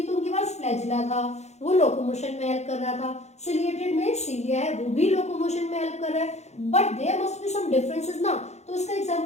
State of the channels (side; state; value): right; late; 0.32 ms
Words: तो उनके पास फ्लैजिला था, वो लोकोमोशन में हेल्प कर रहा था। सिलिएटेड में सीलिया है, वो भी लोकोमोशन में हेल्प कर रहा है, but there must be some differences ना। तो इसका